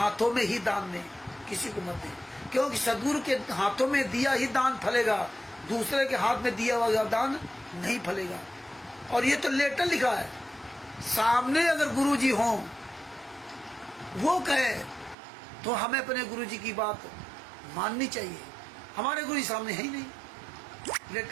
में ही दान दें, किसी को मत दें, क्योंकि सदगुरु के हाथों में दिया ही दान फलेगा, दूसरे के हाथ में दिया हुआ दान नहीं फलेगा। और ये तो लेटर लिखा है, सामने अगर गुरु जी हों वो कहे तो हमें अपने गुरु जी की बात माननी चाहिए। हमारे गुरु जी सामने है ही नहीं,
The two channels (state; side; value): drops out; left; at 15.2 s